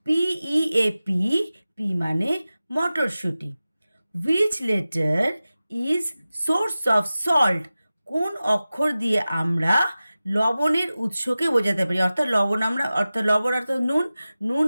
পি মানে মটরশুঁটি। Which letter is source of salt? কোন অক্ষর দিয়ে আমরা লবণের উৎসকে বোঝাতে পারি? অর্থাৎ লবণ অর্থাৎ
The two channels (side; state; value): both; inverted; correlation -0.96